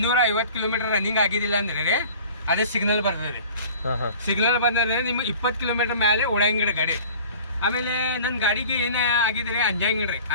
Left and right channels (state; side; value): inverted; both; correlation -0.44